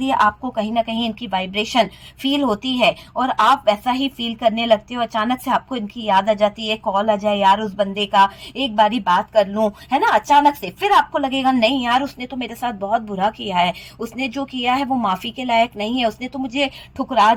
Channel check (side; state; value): both; identical; correlation 1.00